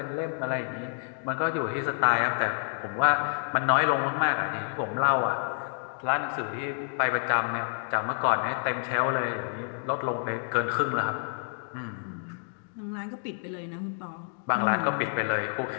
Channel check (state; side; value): silent; right; digital silence